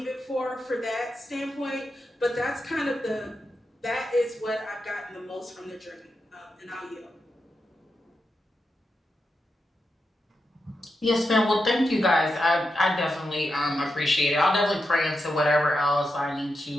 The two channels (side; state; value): both; normal; correlation 0.87